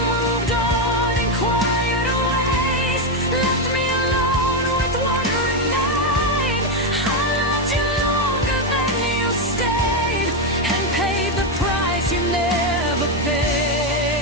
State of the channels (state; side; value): normal; both; correlation 0.06